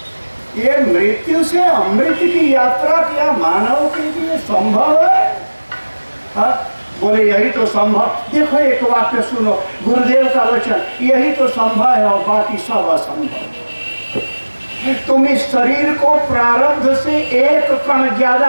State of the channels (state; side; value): inverted; both; correlation -1.00